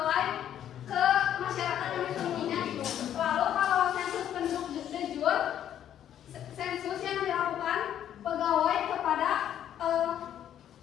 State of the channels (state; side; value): quieter; right; 10.4 dB